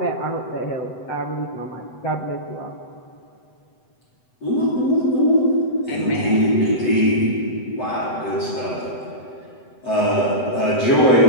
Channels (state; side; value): late; right; 7.9 ms